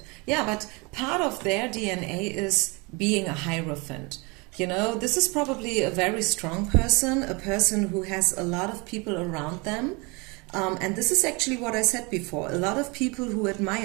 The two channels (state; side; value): quieter; left; 28.4 dB